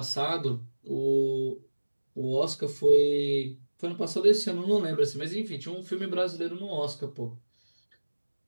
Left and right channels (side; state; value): both; inverted; correlation -1.00